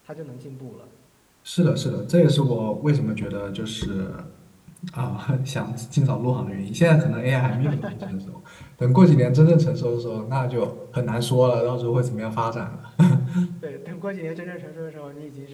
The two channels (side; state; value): both; identical; correlation 1.00